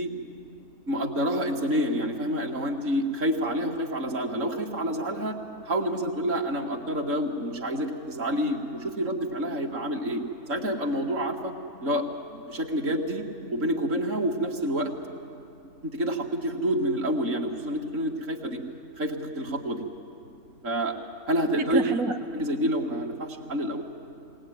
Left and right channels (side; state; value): left; late; 3.7 ms